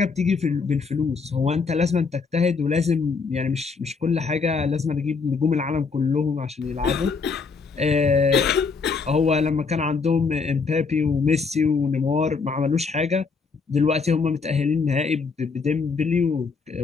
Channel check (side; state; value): right; quieter; 4.9 dB